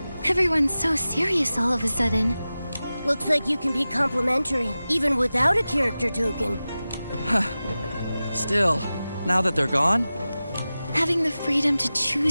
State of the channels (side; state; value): both; inverted; correlation -0.95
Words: Everyone's so serious all of a sudden. Looks like you can be complimentary, even without a character token. Still, now that they're gone, Having the freedom to